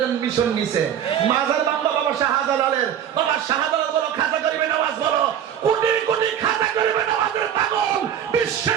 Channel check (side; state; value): left; quieter; 9.6 dB